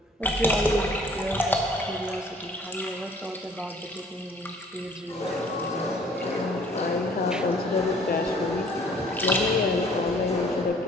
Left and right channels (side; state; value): both; normal; correlation 0.56